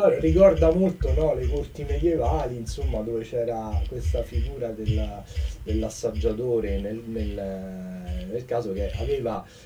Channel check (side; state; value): both; identical; correlation 1.00